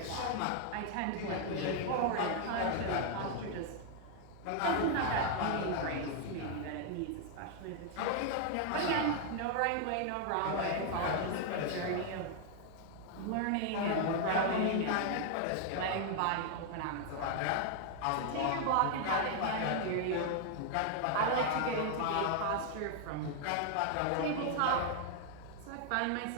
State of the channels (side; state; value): both; different; correlation 0.00